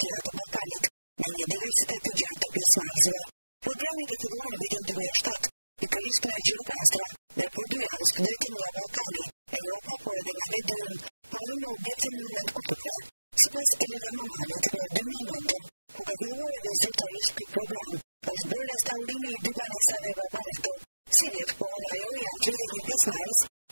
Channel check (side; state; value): both; inverted; correlation -1.00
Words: të Ballkanit, me një diversitet të gjerë të pjesëmarrësve. Programi ka filluar në vitin 2007, pikërisht nga Gjirokastra, dhe për 2 javë studentët nga Ballkani, Evropa, por edhe nga vendi ynë, punojnë në objekte monument kulture. Sipas Elena Mamanit, në 2009, kur ka filluar edhe zyrtarisht ky program, është bërë restaurimi i 2 banesave Baba Meto. Si vjet pohon ajo, janë 31 pjesëmarrës,